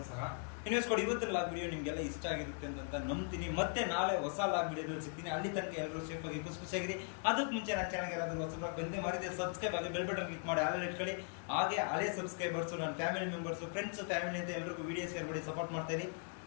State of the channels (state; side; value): silent; right; 52 dB below the other